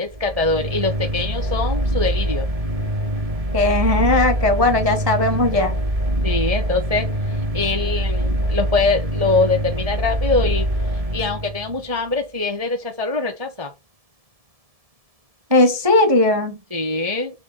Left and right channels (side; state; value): left; late; 1.7 ms